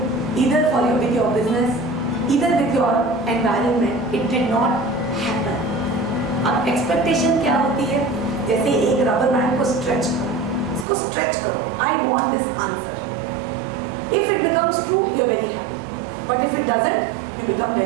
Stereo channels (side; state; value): left; drops out; at 10.9 s